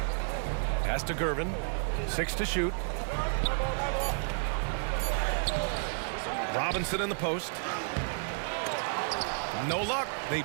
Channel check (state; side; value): silent; left; 57 dB below the other